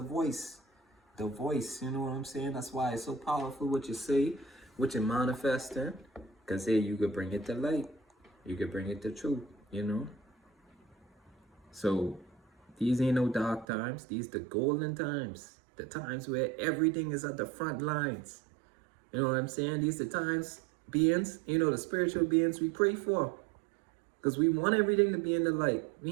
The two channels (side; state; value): left; drops out; at 13.7 s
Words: The voice, you know what I'm saying? That's why it's so powerful what you say, what you manifesting, because hey, you could bring it to light. You could bring it to truth, you know? So these ain't no dark times. These the golden times. The times where everything is at the front lines. You know what I'm saying? These the times, beings, you know, the spiritual beings we pray for. Because we want everything to be in the light.